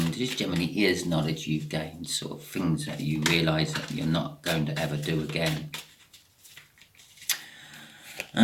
It just generally is knowledge you've gained, sort of things that you realise that you're not going to ever do again.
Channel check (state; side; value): identical; both; correlation 1.00